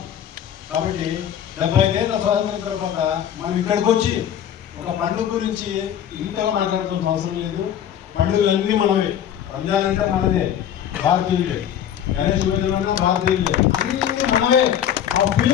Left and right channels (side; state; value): right; quieter; 9.8 dB